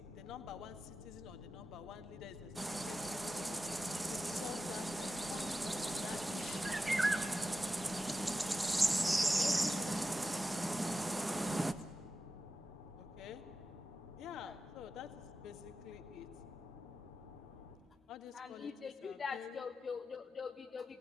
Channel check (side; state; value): both; normal; correlation 0.92